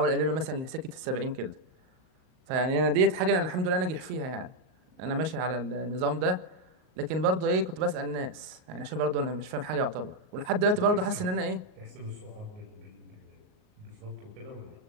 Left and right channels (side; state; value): left; late; 38 ms